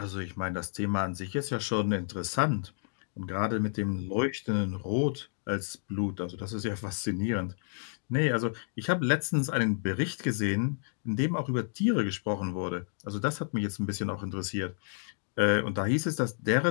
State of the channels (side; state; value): right; silent; digital silence